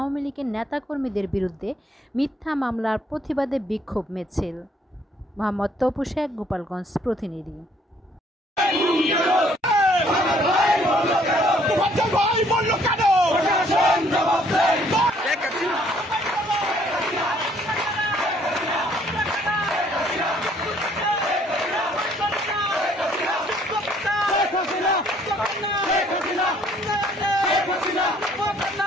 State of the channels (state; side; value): normal; both; correlation 0.63